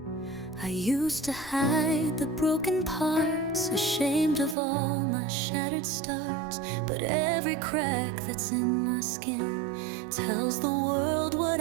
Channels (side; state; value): left; drops out; at 4.5 s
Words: I used to hide the broken parts, ashamed of all my shattered starts. But every crack that's in my skin tells the world what